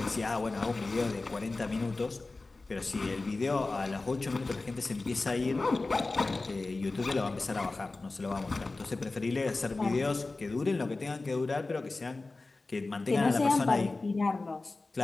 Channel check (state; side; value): quieter; right; 3.4 dB